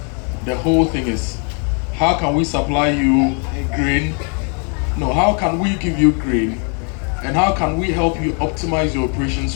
The whole thing is, how can we supply you grain? No, how can we give you grain? And how can we help you optimize your operation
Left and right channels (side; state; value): right; quieter; 39.4 dB